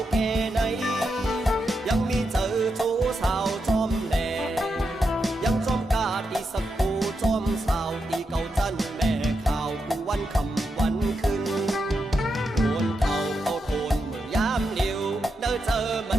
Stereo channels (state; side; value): normal; both; correlation 0.85